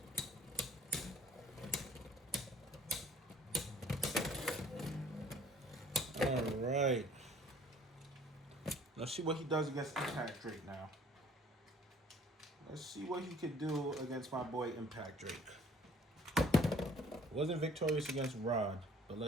Alright. Let's see what he does against Impact Drake now. Let's see what he could do against my boy Impact Drake. Wasn't victorious against Rod, but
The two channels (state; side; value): normal; both; correlation 0.55